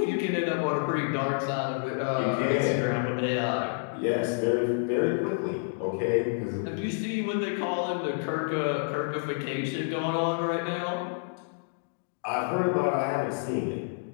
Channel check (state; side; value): silent; right; digital silence